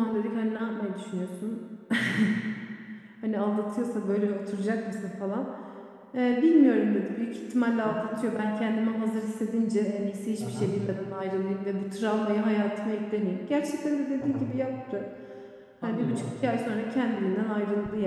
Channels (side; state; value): both; identical; correlation 1.00